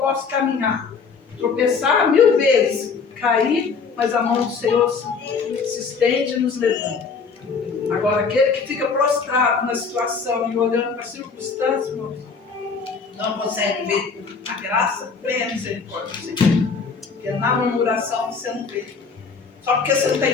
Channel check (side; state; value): right; quieter; 5.2 dB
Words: caminhar, tropeçar 1000 vezes, cair, mas a mão do Senhor se estende e nos levanta. Agora, aquele que fica prostrado na situação e olhando para a circunstância, irmãos, não consegue ver a graça, vem a misericórdia do Senhor. Porque na murmuração você não vê. Só porque você não está